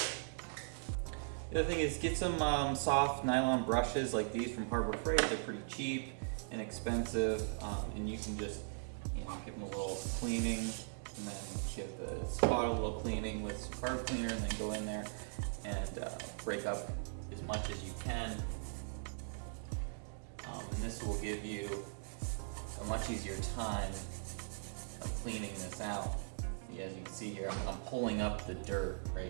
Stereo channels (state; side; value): silent; left; digital silence